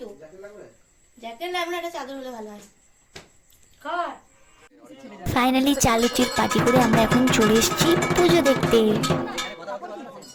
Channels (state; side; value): identical; both; correlation 1.00